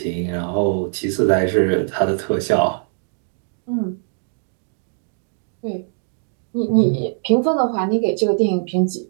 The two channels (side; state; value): left; silent; digital silence